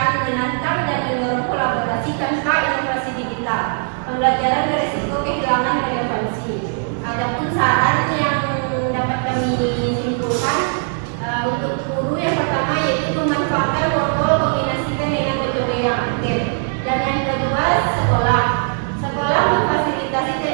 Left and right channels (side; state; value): left; silent; 58 dB below the other